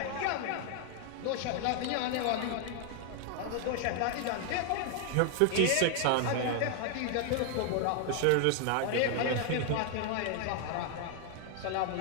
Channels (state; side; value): different; both; correlation 0.00